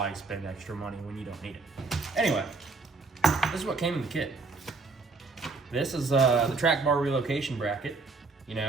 spend extra money when you don't need it? Anyway, this is what came in the kit. This is the track bar relocation bracket. You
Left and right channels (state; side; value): quieter; left; 4.0 dB